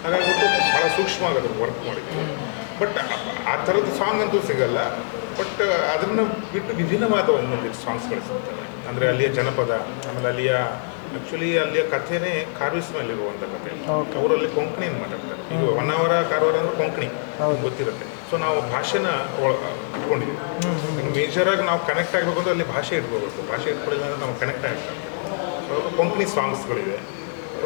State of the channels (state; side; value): silent; right; 63 dB below the other